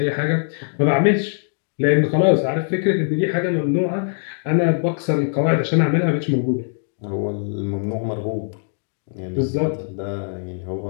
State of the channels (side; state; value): right; silent; digital silence